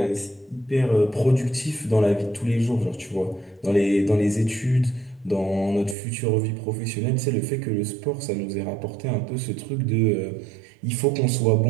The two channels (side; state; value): left; drops out; at 6.0 s